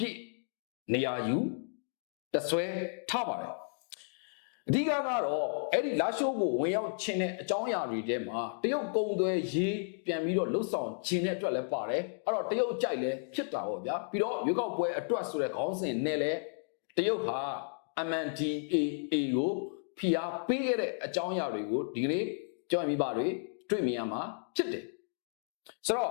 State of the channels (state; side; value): silent; right; digital silence